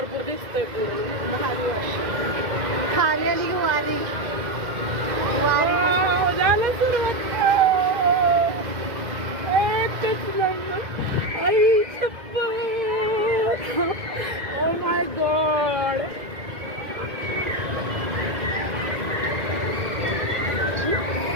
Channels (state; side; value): late; left; 2.1 ms